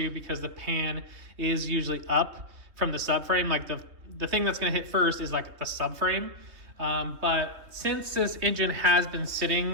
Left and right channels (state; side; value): late; left; 3.2 ms